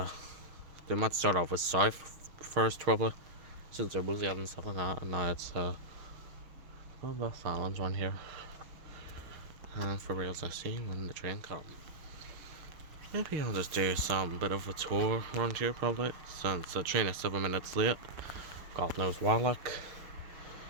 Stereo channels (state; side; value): late; left; 6.5 ms